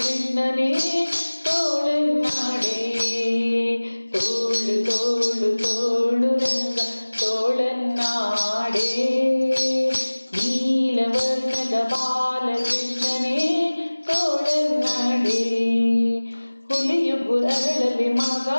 ತೋಳನ್ನಾಡೆ. ತೋಳು ತೋಳು ತೋಳು ರಂಗ ತೋಳನ್ನಾಡೆ, ನೀಲವರ್ಣದ ಬಾಲಕೃಷ್ಣನೇ ತೋಳನ್ನಾಡೆ. ಹುಲಿಯುಗು ಅರಳಲಿ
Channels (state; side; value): inverted; both; correlation -1.00